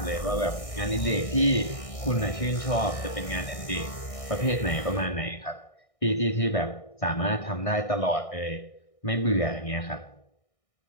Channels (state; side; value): late; right; 1.6 ms